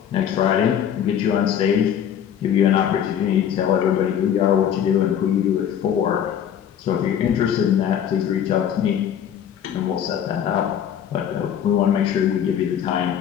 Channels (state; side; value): quieter; right; 9.3 dB